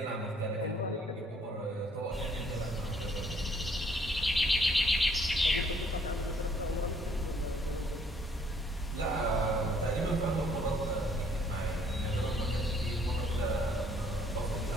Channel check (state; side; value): normal; both; correlation 0.64